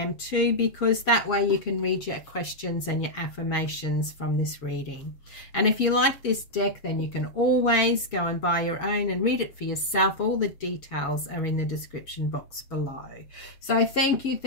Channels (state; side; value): late; right; 7.2 ms